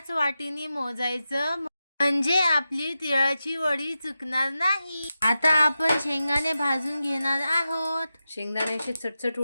वाटीने मोजायचं, म्हणजे आपली तिळाची वडी चुकणार नाही. आता आपण शेंगदाणे भाजून घेणार आहोत. शेंगदाणे असे चटचट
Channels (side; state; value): both; inverted; correlation -0.91